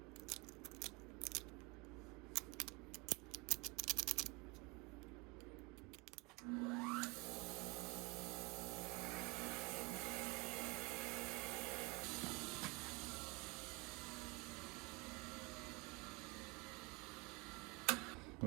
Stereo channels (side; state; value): left; quieter; 25.6 dB